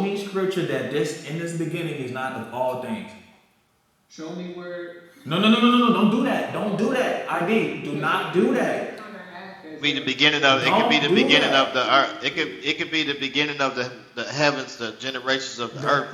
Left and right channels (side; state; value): both; identical; correlation 1.00